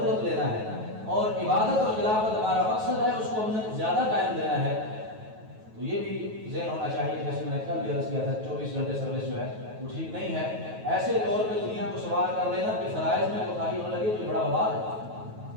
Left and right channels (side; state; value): left; late; 9.3 ms